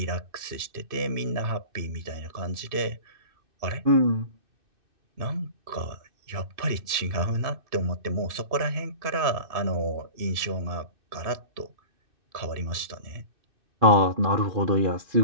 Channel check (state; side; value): late; left; 2.6 ms